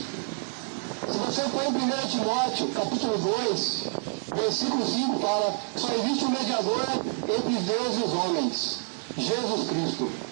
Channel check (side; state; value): left; silent; 60 dB below the other